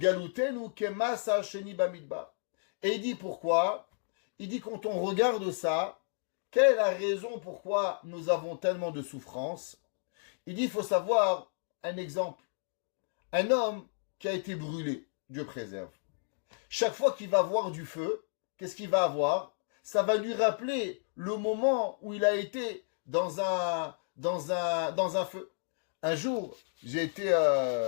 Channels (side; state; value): right; silent; digital silence